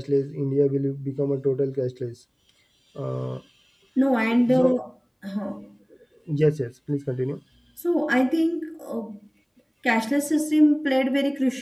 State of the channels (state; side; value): identical; both; correlation 1.00